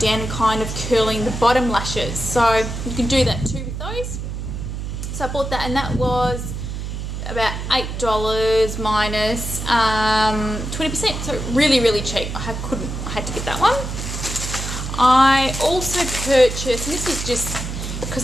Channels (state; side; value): noise; right; hum, 5 dB below the sound